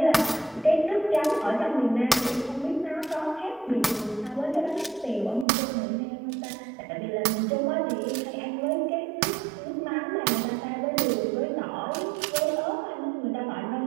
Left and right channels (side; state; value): left; drops out; at 5.5 s